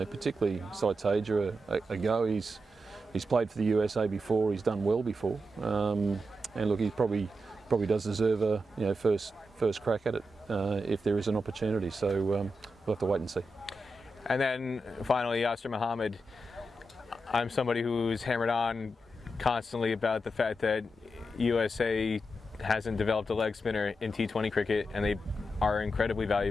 particularly Saitaja a go. He's played for the USA before. He's done well before. And look, he probably does deserve a first crack at it if there is an opportunity. So we'll have to wait and see. And then finally, Yasir Mohammed. I'm somebody who's hammered on constantly about the fact that USA hasn't developed a leg spinner in T20 cricket, and they are incredibly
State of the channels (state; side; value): normal; both; correlation 0.87